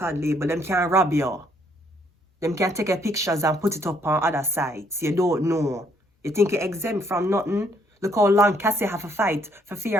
label, them can't rob you. Them can take a pictures and put it up on other sites. You don't know. You think you're exempt from nothing? Look how long Cassie have a fight for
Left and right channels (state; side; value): normal; both; correlation 0.68